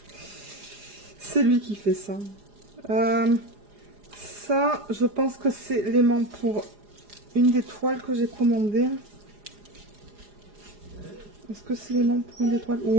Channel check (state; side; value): late; left; 4.9 ms